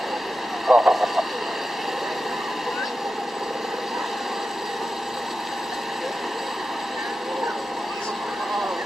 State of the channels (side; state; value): both; normal; correlation 0.92